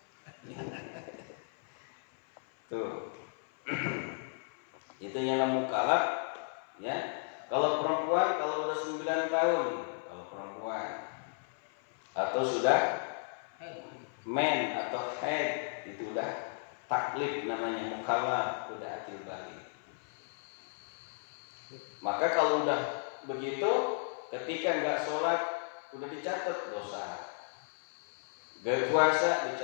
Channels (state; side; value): silent; right; 55 dB below the other